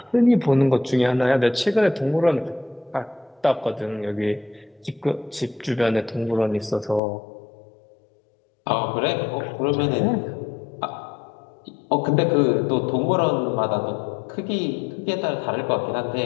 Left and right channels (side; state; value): right; drops out; at 7.0 s